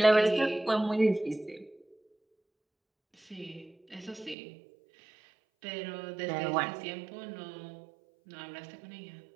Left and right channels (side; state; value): left; drops out; at 4.4 s